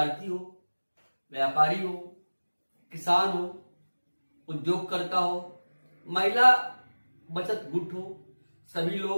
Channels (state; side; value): inverted; both; correlation -1.00